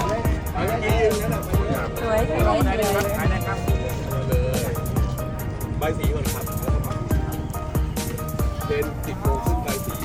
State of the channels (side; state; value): both; identical; correlation 1.00